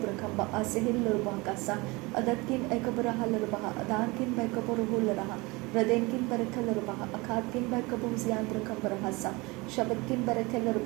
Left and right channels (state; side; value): quieter; left; 24.3 dB